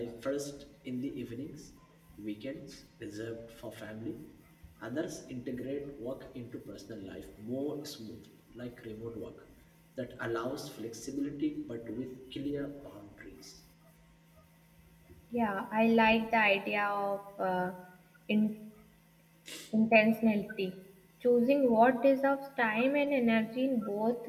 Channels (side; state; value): both; identical; correlation 1.00